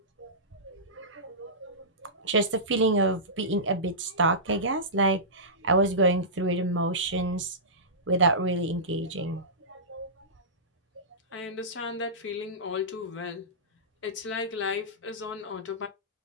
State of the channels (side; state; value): both; normal; correlation -0.19